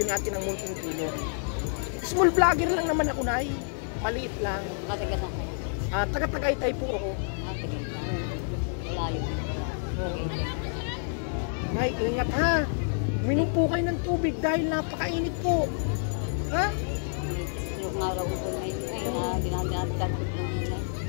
natin ng munting tulong. Small vlogger lang naman ako, Nay. Maliit lang. Matagas ako. Taga-Tagaytay po ako. Matagas lang. Malayo din pala. Ay, ingat ha. Minom po kayo ng tubig dahil napakainit po. Ha? May stroke nga raw ko ngayon ay na dinadagdag ko ng hinay.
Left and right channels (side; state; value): right; silent; digital silence